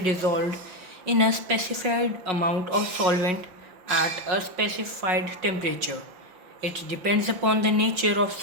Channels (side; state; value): left; late; 5.8 ms